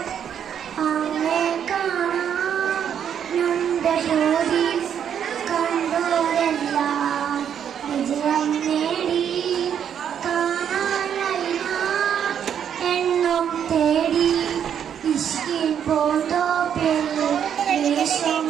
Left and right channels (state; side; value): quieter; left; 8.7 dB